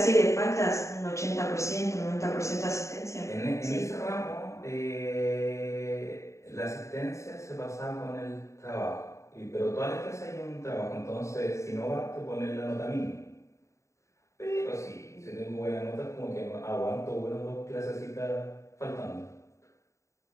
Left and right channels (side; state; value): right; late; 0.14 ms